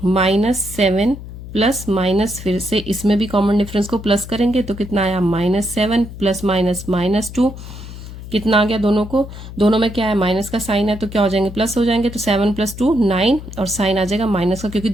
-7 प्लस माइनस, फिर से इसमें भी कॉमन डिफरेंस को प्लस करेंगे तो कितना आया -7 प्लस माइनस -2, कितना आ गया दोनों को, दोनों में क्या है माइनस का साइन है तो क्या हो जाएंगे प्लस हो जाएंगे, तो 7 + 2 9 और साइन आ जाएगा माइनस का, क्योंकि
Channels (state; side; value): noise; left; hum, 12 dB below the sound